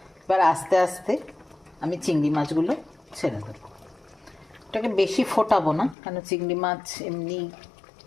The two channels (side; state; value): right; drops out; at 6.0 s